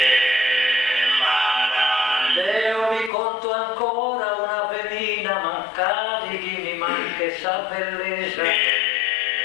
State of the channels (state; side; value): drops out; right; at 3.1 s